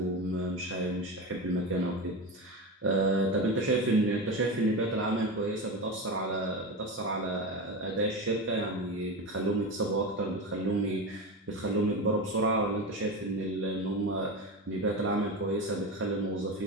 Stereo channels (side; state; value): both; normal; correlation 0.22